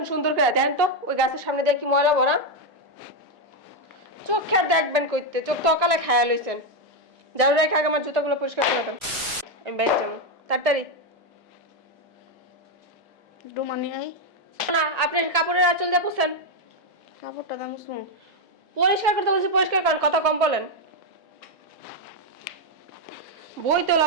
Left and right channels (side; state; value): both; normal; correlation 0.03